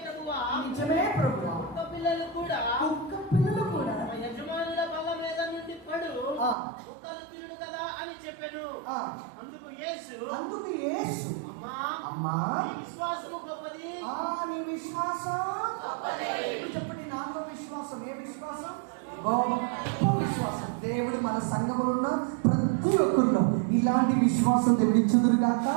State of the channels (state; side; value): drops out; left; at 6.6 s